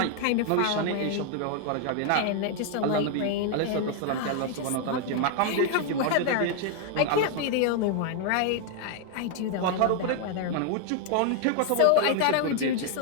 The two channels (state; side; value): different; both; correlation 0.00